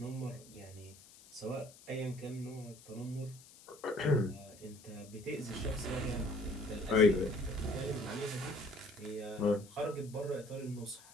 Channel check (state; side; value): noise; left; hiss, 21 dB below the sound